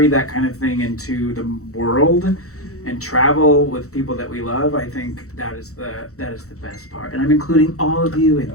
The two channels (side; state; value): right; late; 0.64 ms